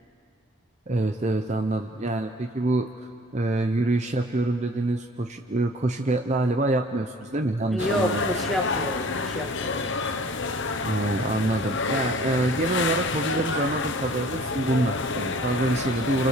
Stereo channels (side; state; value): both; normal; correlation 0.51